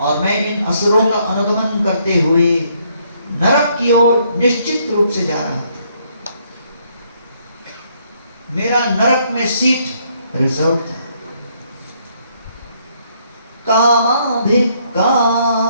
मैं इन असुरों का अनुगमन करते हुए नरक की ओर निश्चित रूप से जा रहा था। मेरा नरक में सीट रिजर्व था। कामाभिकाममनुयः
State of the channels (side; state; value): both; inverted; correlation -0.70